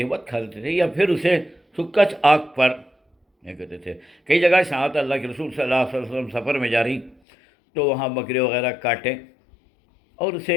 بہت کھا لیتے تھے، یا پھر اسے سکا آگ پر یہ کہتے تھے۔ کئی جگہ سے آتا اللہ کے رسول صلی اللہ علیہ وسلم سفر میں جا رہی تو وہاں بکرے وغیرہ کاٹیں اور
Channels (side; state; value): right; drops out; at 7.2 s